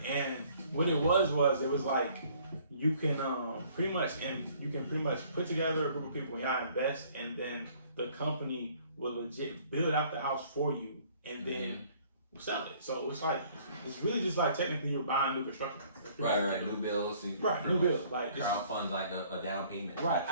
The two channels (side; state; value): both; inverted; correlation -0.58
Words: And what it was like you can pretty much put together a group of people and y'all invest, and then the company will legit build out the house for you, and then sell it. So it's like it's really just like technically you're buying new construction. Right. New bills. New bills. Like crowdfund like a down payment. Right.